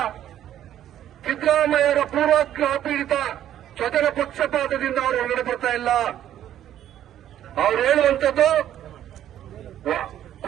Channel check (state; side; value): quieter; left; 11.4 dB